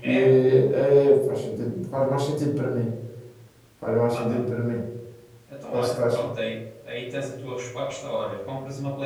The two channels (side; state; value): both; identical; correlation 1.00